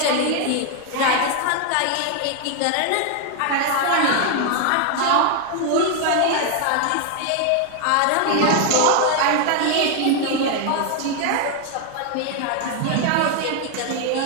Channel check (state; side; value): different; both; correlation 0.01